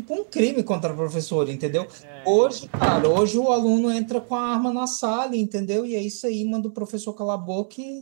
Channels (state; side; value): silent; left; digital silence